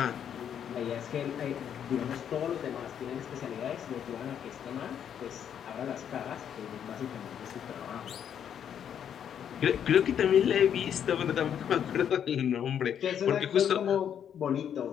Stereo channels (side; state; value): right; quieter; 8.9 dB